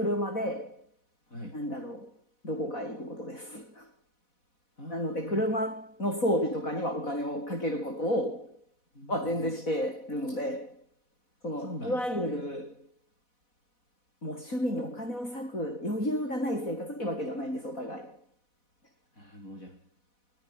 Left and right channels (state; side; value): late; right; 4.1 ms